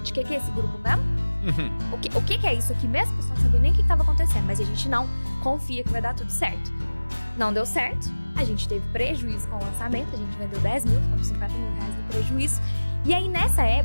que é esse grupo mesmo? O que é isso aqui mesmo? O pessoal não sabia nem o que estava acontecendo, mas a gente não confia que vai dar tudo certo. Não deu certo, a gente teve prejuízo com o lançamento, a gente vendeu 10 mil, ficamos 50 mil reais de prejuízo. E aí nessa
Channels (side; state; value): both; inverted; correlation -1.00